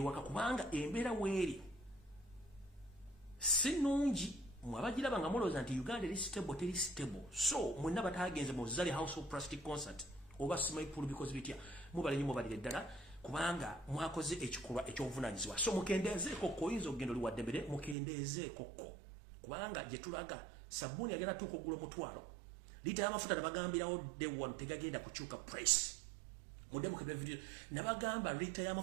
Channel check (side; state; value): left; drops out; at 17.9 s